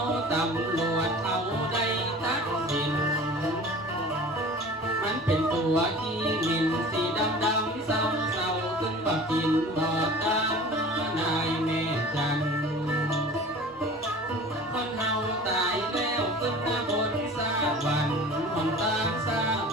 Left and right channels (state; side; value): normal; both; correlation 0.41